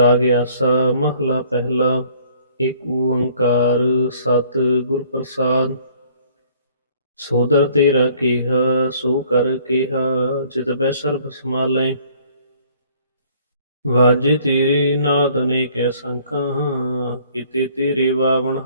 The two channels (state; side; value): inverted; both; correlation -0.58